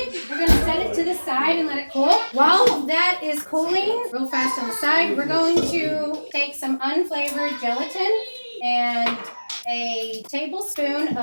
we're going to set it to the side and let it cool. While that is cooling, real fast on the side, we're going to take some unflavored gelatin and a tablespoon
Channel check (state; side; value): inverted; both; correlation -1.00